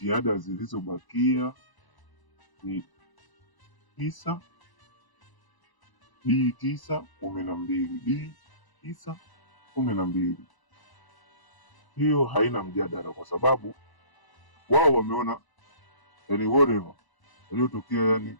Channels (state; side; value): late; right; 1.0 ms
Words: zilizobakia ni D9 12 D9 12. Hiyo haina mjadala kwa sababu wao wameona whatever yaliyotokea